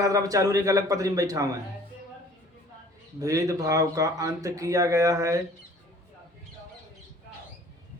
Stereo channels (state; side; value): normal; both; correlation 0.52